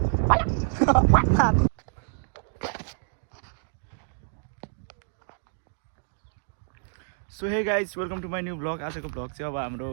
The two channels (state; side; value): silent; left; digital silence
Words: So hey guys welcome to my new blog. आजको ब्लग चाहिँ अब हाम्रो